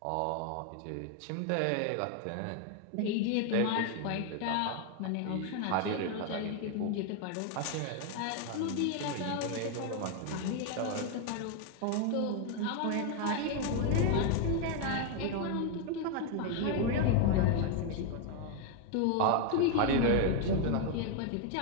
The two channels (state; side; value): different; both; correlation 0.01